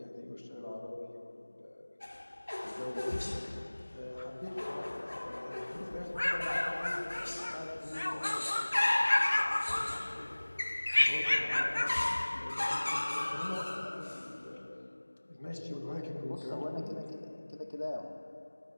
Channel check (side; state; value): both; inverted; correlation -1.00